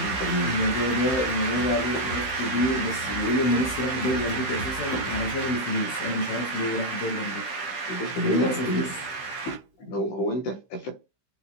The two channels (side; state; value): right; late; 15 ms